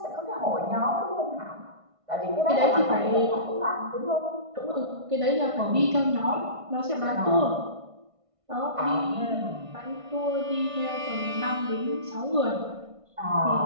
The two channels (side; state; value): left; late; 1.5 ms